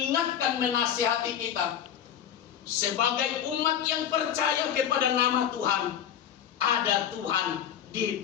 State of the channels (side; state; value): right; quieter; 9.5 dB